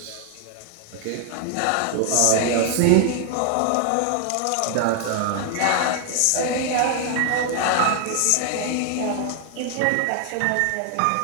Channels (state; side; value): different; both; correlation 0.00